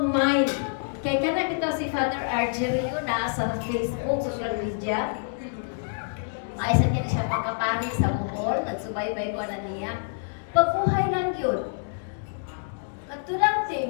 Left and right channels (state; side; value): silent; right; digital silence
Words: mind. Kaya ka na ito si Father Argerio na sa Facebook, social media. Maisan ka na siya pagkapani sa Bohol, nagsubaybay ko na niya. Pagkuhay lang yun. Katulang